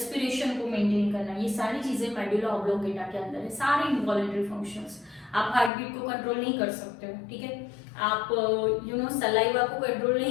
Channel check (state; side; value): drops out; right; at 5.7 s